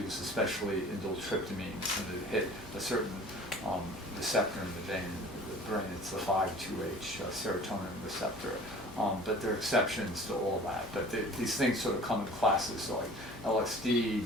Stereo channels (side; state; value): both; normal; correlation 0.45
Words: especially indole-tryptamines, and that hit a certain receptor in the vein, the brain. It's the 5-2H serotonin receptor. But there are exceptions to all that. But these things sort of come in classes, so like LSD,